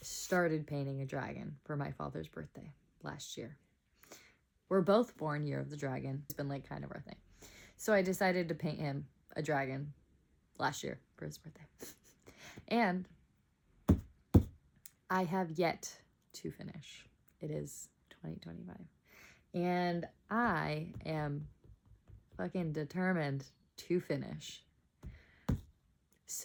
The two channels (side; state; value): both; identical; correlation 1.00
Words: started painting a dragon for my father's birthday last year. We're both born year of the dragon. It's been like kind of our thing. So I decided to paint him a dragon last year for his birthday. And I have yet to finish. It is 2025. And I am fucking determined to finish